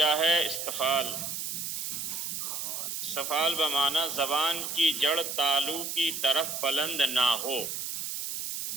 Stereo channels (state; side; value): noise; right; hiss, 4 dB below the sound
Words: ہے؟ استفال. استفال بمعنی زبان کی جڑ تالو کی طرف بلند نہ ہو.